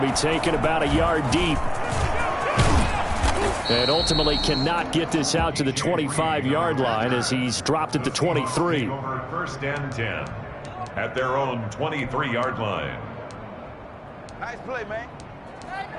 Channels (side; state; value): both; identical; correlation 1.00